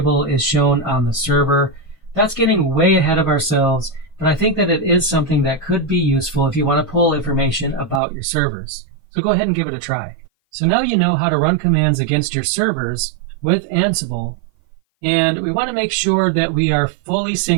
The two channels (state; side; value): drops out; left; at 8.0 s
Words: is shown on the server. That's getting way ahead of ourselves, but I think that it is something that could be useful if you want to pull information about your servers. So go ahead and give it a try. So now you know how to run commands against your servers with Ansible, and we want to make sure that we are fully